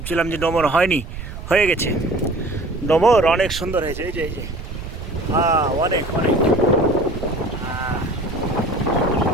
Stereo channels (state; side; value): noise; right; rumble, 9 dB below the sound